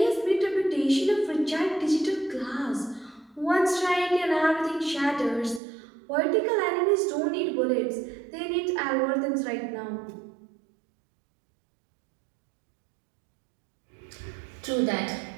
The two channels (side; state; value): left; drops out; at 5.6 s